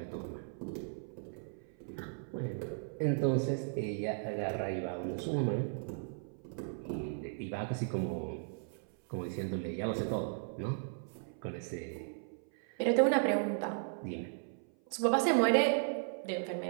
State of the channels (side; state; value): left; silent; 54 dB below the other